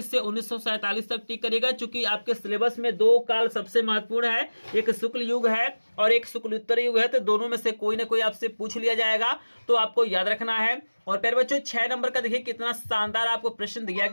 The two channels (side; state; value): both; inverted; correlation -1.00